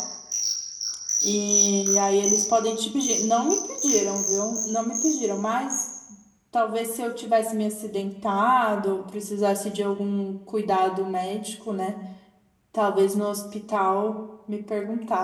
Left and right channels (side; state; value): both; identical; correlation 1.00